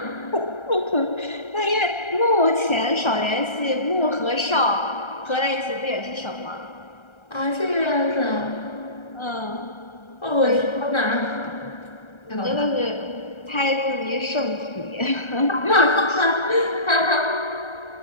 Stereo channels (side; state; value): right; late; 1.3 ms